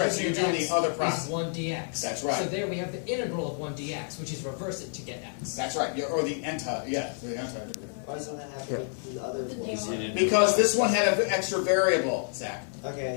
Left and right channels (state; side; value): silent; right; 59 dB below the other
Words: So you're doing X the other is process. 1 dx. That's right. So there we have the integral of 1 dx, which is reverse it to get x. That's right. Or the anti, yeah, the anti-derivative. Why doesn't that happen with the other ones? Because this one had an extra variable, Zach.